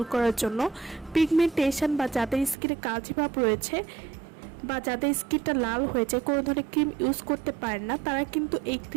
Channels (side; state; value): left; drops out; at 2.6 s